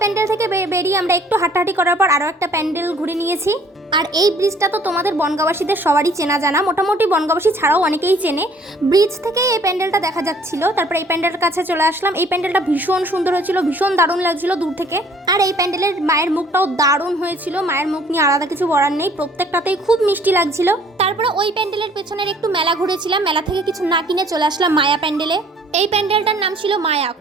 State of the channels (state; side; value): normal; both; correlation 0.57